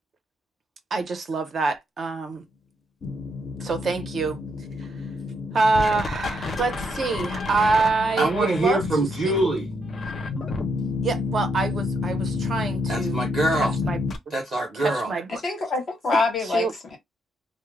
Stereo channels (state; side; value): normal; both; correlation 0.76